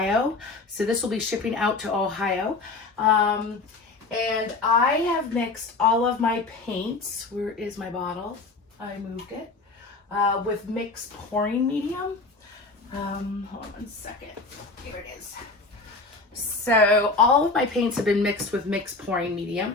So this will be shipping out to Ohio. And I have mixed all of my paints. Where is my bottle? I moved it. With mixed pouring medium. Hold on 1 second. Here it is. So all of my paints have been mixed with mixed pouring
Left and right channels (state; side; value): quieter; right; 3.7 dB